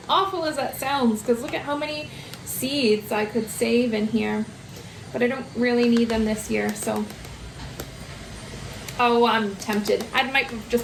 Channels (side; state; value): both; identical; correlation 1.00